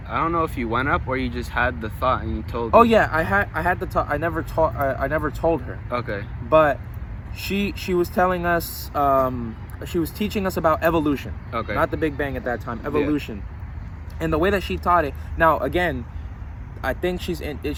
don't know if you went up or you just had the thought and you told. Oh yeah, I had the talk. I never told her, Okay. but she was telling us, she was teaching us about evolution, Okay. not the Big Bang at that time, evolution. And the way that she taught it, now again, I think she's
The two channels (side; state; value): both; identical; correlation 1.00